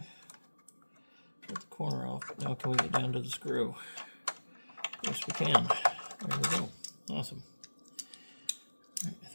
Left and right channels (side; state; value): both; inverted; correlation -1.00